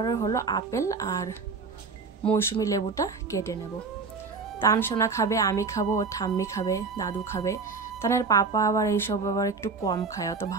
হলো আপেল আর মৌসুমি লেবুটা কেটে নেব। তানসোনা খাবে, আমি খাবো, ও ঠাম্মি খাবে, দাদু খাবে। তানের পাপা আবার এইসব আবার একটু কম খায়, অত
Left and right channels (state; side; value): quieter; left; 4.6 dB